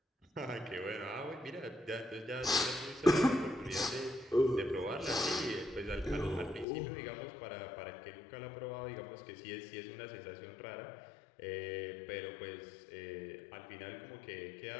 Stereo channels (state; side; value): drops out; right; at 6.7 s